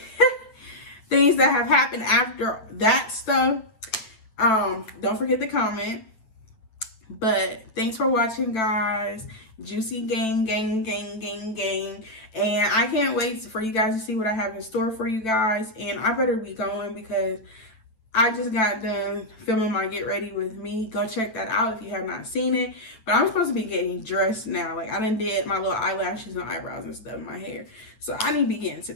things that have happened after that stuff, don't forget to comment. But thanks for watching, guys. Juicy gang. And I can't wait for you guys to see what I have in store for you guys. And I better be going, because I just got done filming my Get Ready With Me. Go check that out if you have not seen it. But I'm supposed to be getting dressed now. Like, I done did my little eyelashes and eyebrows and stuff in my hair. So I need to be getting to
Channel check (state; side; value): late; right; 9.3 ms